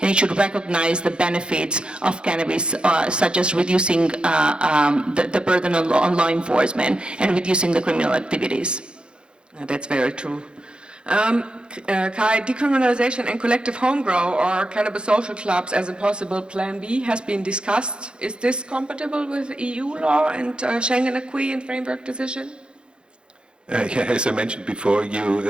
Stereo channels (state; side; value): late; left; 0.053 ms